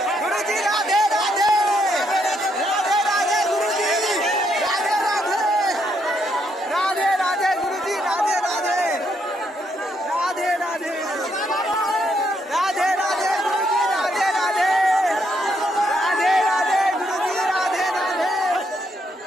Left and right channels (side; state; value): both; normal; correlation 0.75